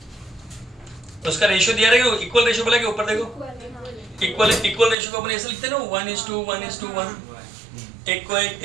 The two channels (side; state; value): left; drops out; at 5.0 s